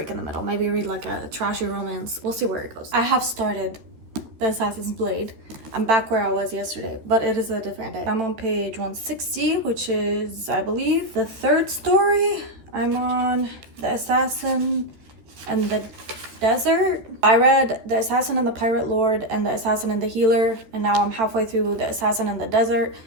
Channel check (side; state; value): left; late; 13 ms